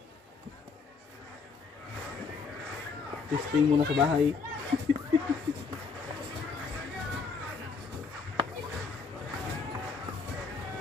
Testing muna sa bahay.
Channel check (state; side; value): quieter; right; 4.9 dB